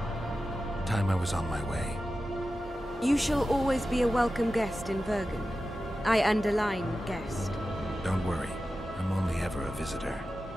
Time I was on my way. You shall always be a welcome guest in Vergen. I underline guest. Don't worry, I'm only ever a visitor.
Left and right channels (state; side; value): normal; both; correlation 0.93